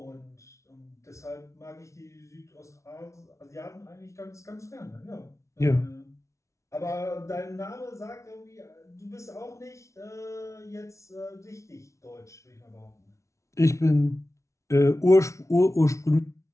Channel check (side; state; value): right; late; 0.14 ms